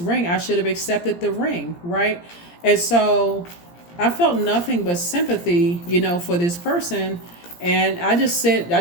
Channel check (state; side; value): late; right; 17 ms